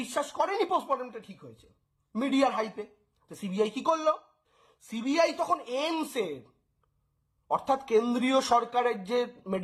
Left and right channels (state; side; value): identical; both; correlation 1.00